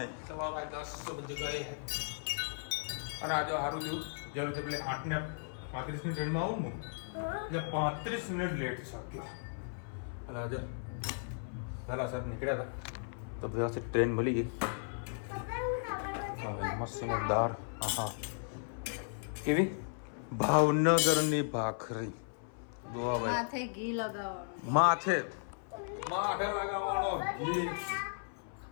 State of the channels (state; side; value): silent; right; 54 dB below the other